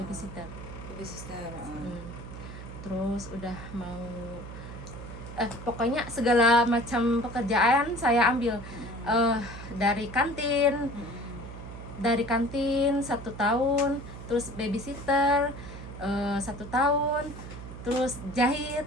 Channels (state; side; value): noise; right; hum, 12 dB below the sound